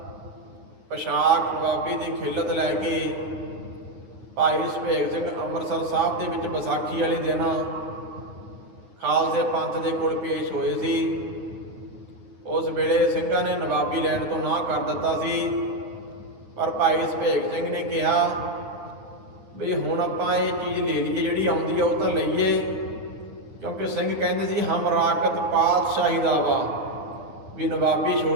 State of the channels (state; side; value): late; left; 9.6 ms